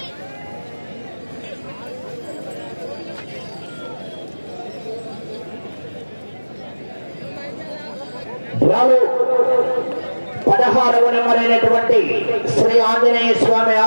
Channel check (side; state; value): both; inverted; correlation -1.00